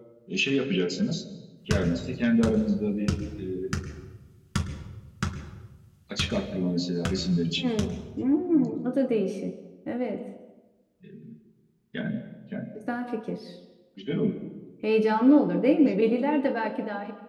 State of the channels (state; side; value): identical; both; correlation 1.00